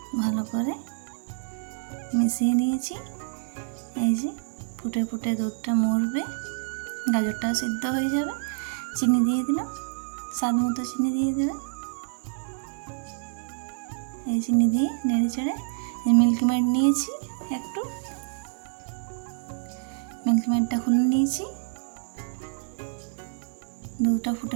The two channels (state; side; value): silent; left; 60 dB below the other